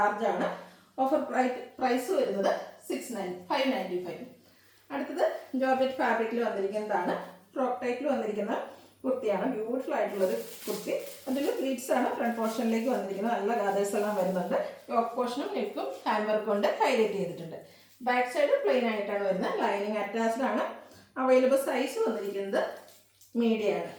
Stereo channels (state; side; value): identical; both; correlation 1.00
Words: ആണ്. ഓഫർ പ്രൈസ് വരുന്നത് 595. അടുത്തത് ജോർജറ്റ് ഫാബ്രിക്കിൽ വന്നിരിക്കുന്നതാണ്. ഫ്രോക്ക് ടൈപ്പിൽ വന്നിരിക്കുന്ന കുർത്തിയാണ്. ബ്യൂട്ടിഫുൾ ആയിട്ടുള്ളൊരു കുർത്തി. അതിൽ പ്ലീറ്റ്സ് ആണ് ഫ്രണ്ട് പോർഷനിലേക്ക് വന്നിരിക്കുന്നത്. നല്ല ഗാദേഴ്സ് എല്ലാം വരുന്നുണ്ട്. യോക്ക് പോർഷനും നെക്കും ഹാൻഡ് വർക്ക് കൊണ്ട് ഹൈലൈറ്റ് ചെയ്തിട്ടുണ്ട്. ബാക്ക് സൈഡ് പ്ലെയിൻ ആയിട്ടാണ് വരുന്നത്. ലൈനിങ് അറ്റാച്ച്ഡ് ആണ്. അവൈലബിൾ സൈസ് വന്നിരിക്കുന്നത് മീഡിയം ആണ്.